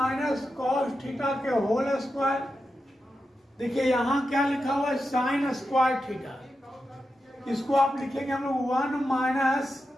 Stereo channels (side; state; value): both; normal; correlation 0.89